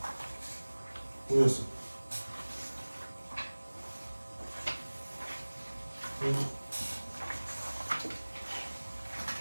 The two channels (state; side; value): inverted; both; correlation -1.00